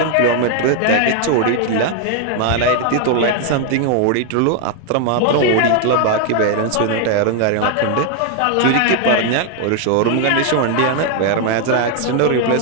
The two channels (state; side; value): different; both; correlation 0.00